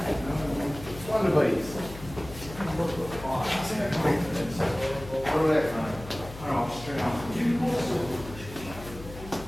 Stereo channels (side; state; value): left; noise; hum, 14 dB below the sound